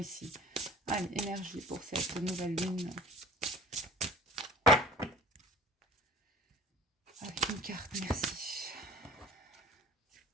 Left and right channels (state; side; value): normal; both; correlation 0.44